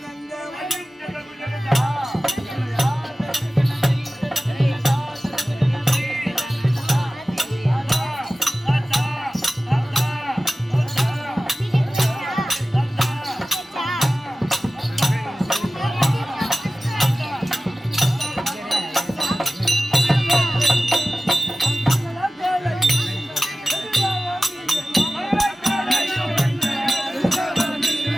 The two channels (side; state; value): both; normal; correlation 0.96